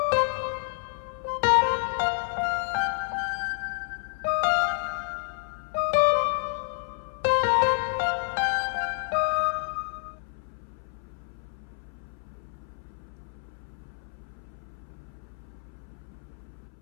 నాకెప్పుడు నీతో ఇలానే ఉండాలనుంది Rohan. I can't do it all the time. I will be tired.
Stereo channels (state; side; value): silent; right; 58 dB below the other